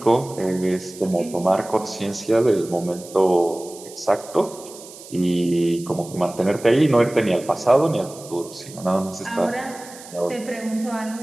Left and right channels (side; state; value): right; noise; hiss, 17 dB below the sound